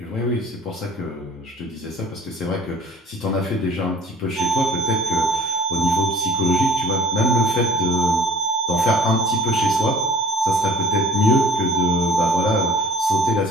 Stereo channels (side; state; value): both; normal; correlation 0.51